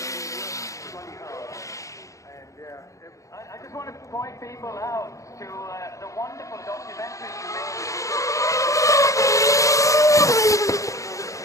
I just want to point people out to the wonderful documentary you made.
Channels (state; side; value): late; right; 0.15 ms